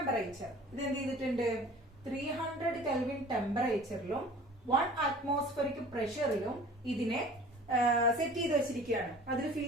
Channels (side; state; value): both; normal; correlation 0.45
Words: ഇത് എന്ത് ചെയ്തിട്ടുണ്ട്? 300 കെൽവിൻ ടെമ്പറേച്ചറിലും 1 atmospheric പ്രഷറിലും ഇതിനെ സെറ്റ് ചെയ്ത് വെച്ചിരിക്കുകയാണ്. അതിൽ ഫിൽ